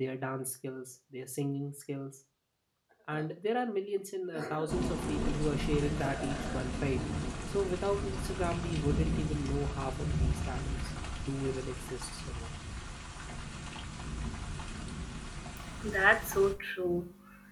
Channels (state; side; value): identical; both; correlation 1.00